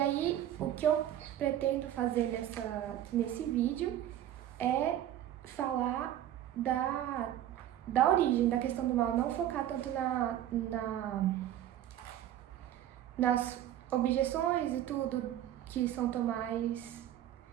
o que eu pretendo fazer nesse vídeo é falar da origem da questão do mal, não focar tanto nas objeções e tudo que São Tomás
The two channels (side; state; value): left; quieter; 11.9 dB